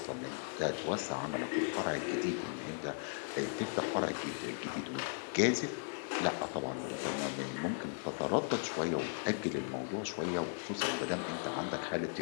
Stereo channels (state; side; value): silent; right; digital silence